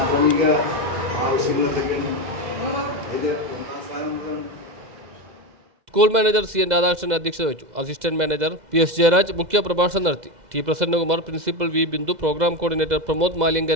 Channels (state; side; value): late; left; 2.0 ms